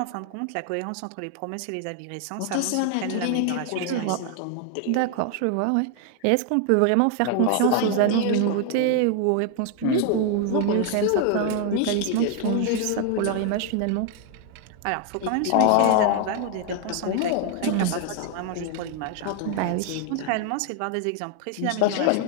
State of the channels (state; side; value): different; both; correlation 0.00